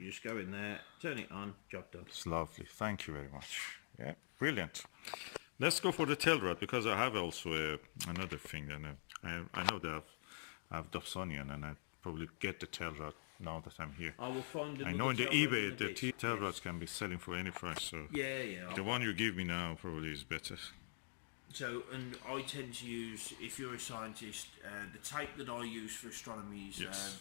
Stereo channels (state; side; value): silent; right; digital silence